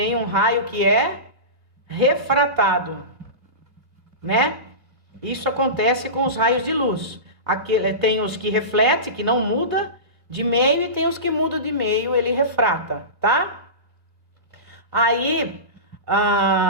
um raio que é refratado, né? Isso acontece com os raios de luz. Tem os que reflete, que não muda de meio, e tem os que mudam de meio, ele refrata, tá? Aí,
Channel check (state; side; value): late; left; 1.8 ms